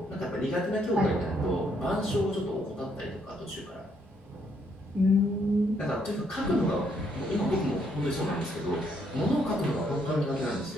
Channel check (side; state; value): both; normal; correlation 0.71